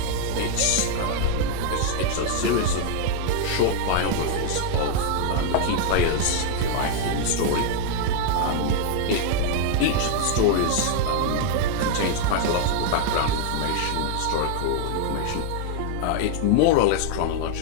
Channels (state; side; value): different; both; correlation 0.00